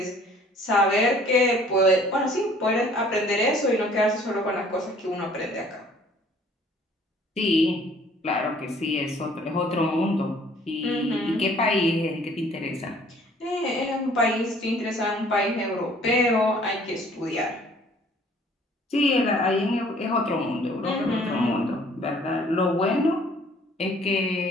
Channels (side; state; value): both; normal; correlation 0.56